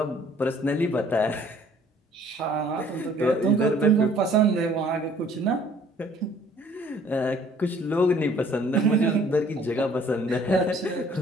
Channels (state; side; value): normal; both; correlation 0.57